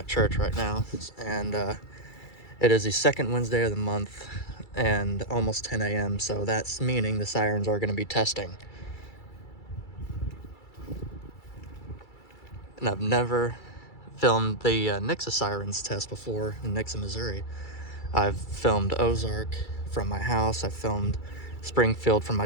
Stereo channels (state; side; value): late; right; 2.3 ms